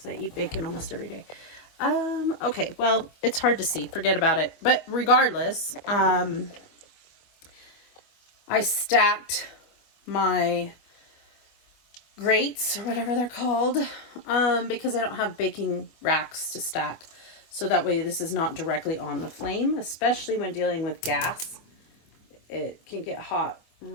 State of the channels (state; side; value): late; right; 24 ms